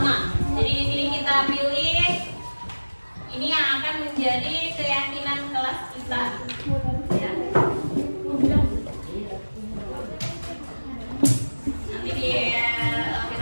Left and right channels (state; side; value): inverted; both; correlation -1.00